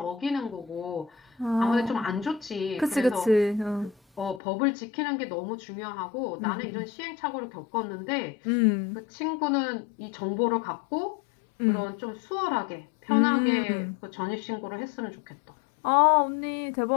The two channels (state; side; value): drops out; right; at 4.4 s